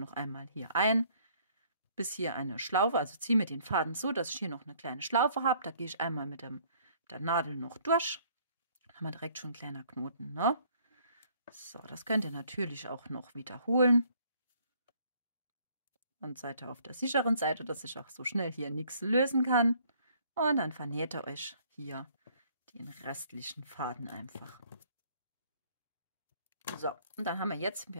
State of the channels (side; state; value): both; inverted; correlation -0.61